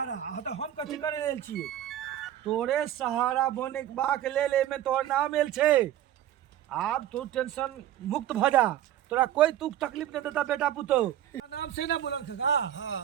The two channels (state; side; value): quieter; left; 11.7 dB